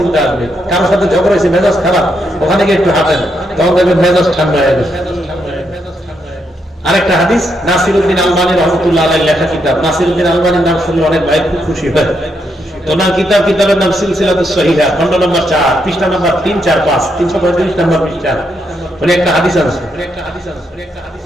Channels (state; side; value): normal; both; correlation 0.79